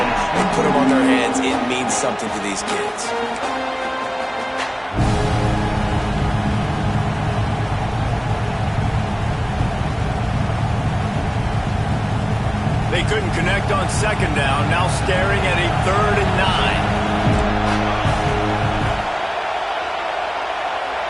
and put them on their heads. It means something to these kids. They couldn't connect on second down, now staring at a 3rd and 9.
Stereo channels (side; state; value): both; identical; correlation 1.00